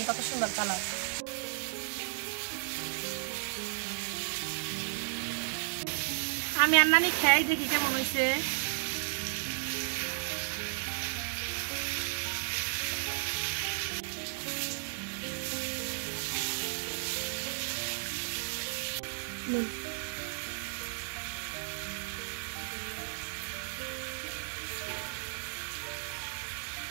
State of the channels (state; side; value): silent; left; digital silence